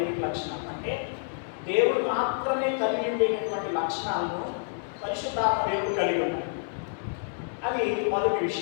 లక్షణాలు అంటే దేవుడు మాత్రమే కలిగి ఉండేటటువంటి లక్షణాలను పరిశుద్ధాత్మ దేవుడు కలిగి ఉన్నాడు. అది మొదటి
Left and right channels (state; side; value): silent; right; digital silence